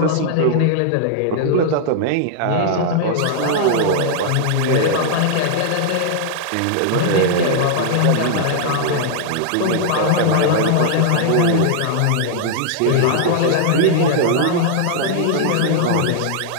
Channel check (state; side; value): different; both; correlation -0.01